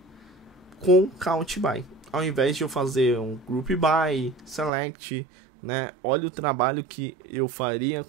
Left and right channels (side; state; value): left; drops out; at 4.7 s